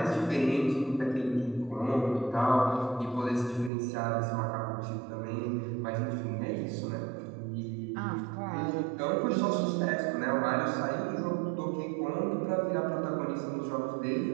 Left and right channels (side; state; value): left; drops out; at 3.7 s